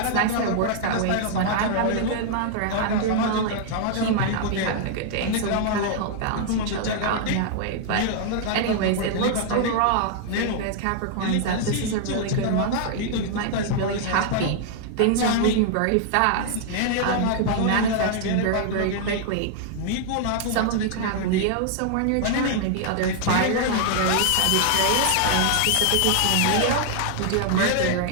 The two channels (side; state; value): both; different; correlation -0.01